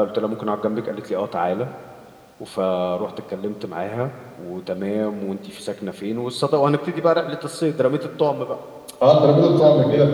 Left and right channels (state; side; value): identical; both; correlation 1.00